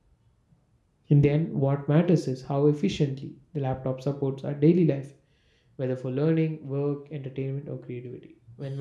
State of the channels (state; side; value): identical; both; correlation 1.00